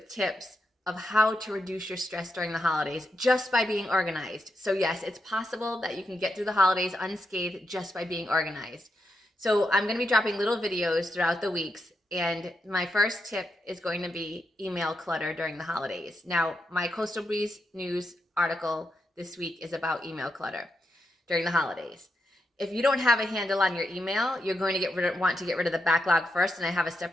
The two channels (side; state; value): both; normal; correlation 0.85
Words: tips of how to reduce your stress during the holidays just by being organized. So yes, it's possible that you can get through the holidays unscathed just by being organized. So I'm going to be dropping little videos throughout the weeks, and my first tip is going to be email clutter during the holidays. Now, my Coastal Breeze News article this week is about email clutter during the holidays. If you don't have a handle on your email, you're going to want to get rid of the backlog first, and I have a